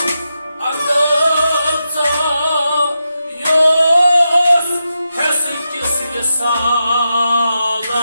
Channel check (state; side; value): inverted; both; correlation -0.88